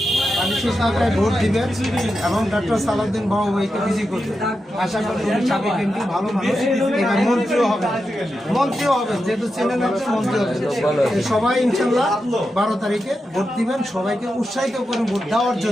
আমি সেই সরকারে ভোট দিবেন এবং ডক্টর সালাউদ্দিন বাবু ভাইকে বিজয়ী করবেন আশা করি উনি সাবেক এমপি ভালো মানুষ এবার মন্ত্রীও হবেন যেহেতু চ্যানেল একটা মন্ত্রী হবেন সবাই ইনশাল্লাহ 12 তারিখে ভোট দিবেন সবাইকে উৎসাহিত করে ভোট দেওয়ার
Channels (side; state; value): both; normal; correlation 0.89